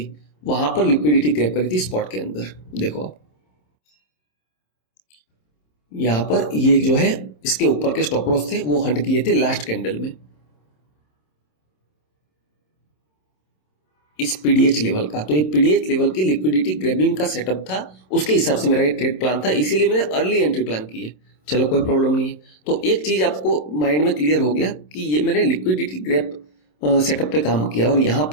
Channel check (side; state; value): right; late; 27 ms